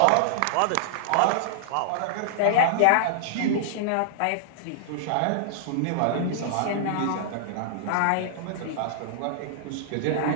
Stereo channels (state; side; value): different; both; correlation -0.01